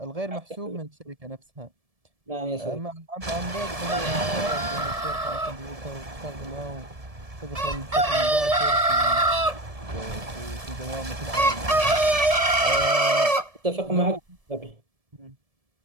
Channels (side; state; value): left; late; 1.7 ms